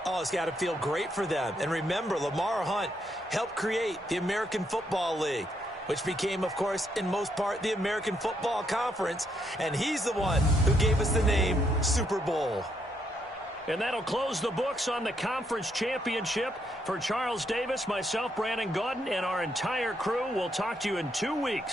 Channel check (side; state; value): both; normal; correlation 0.75